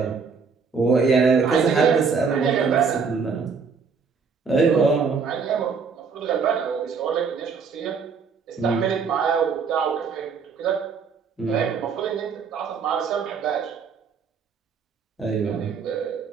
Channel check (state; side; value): quieter; left; 5.5 dB